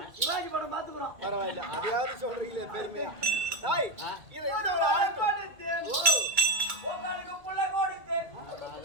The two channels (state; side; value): late; left; 2.3 ms